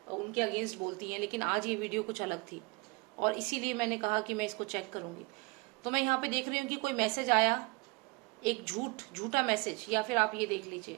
उनके अगेंस्ट बोलती हैं, लेकिन आज ये वीडियो कुछ अलग थी और इसीलिए मैंने कहा कि मैं इसको चेक करूंगी। तो मैं यहाँ पे देख रही हूँ कि कोई मैसेज आया, एक झूठा मैसेज, या फिर आप ये देख लीजिए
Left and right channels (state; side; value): quieter; left; 27.0 dB